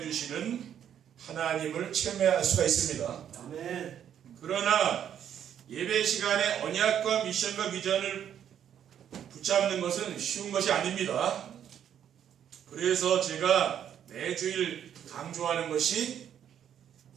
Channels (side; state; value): left; quieter; 9.5 dB